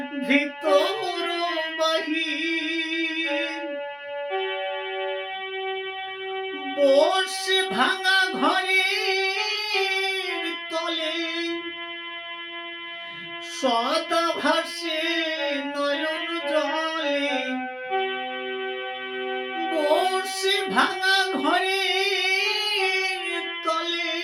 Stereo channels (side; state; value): both; identical; correlation 1.00